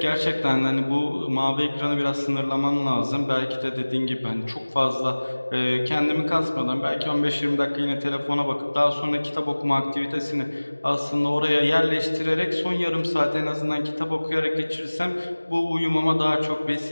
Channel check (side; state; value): both; inverted; correlation -1.00